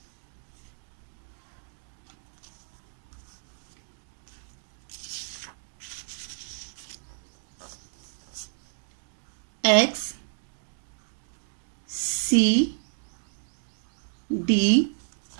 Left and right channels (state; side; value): silent; left; digital silence